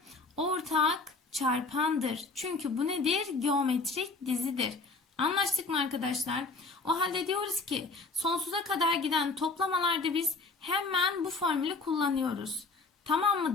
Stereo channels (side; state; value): right; quieter; 3.8 dB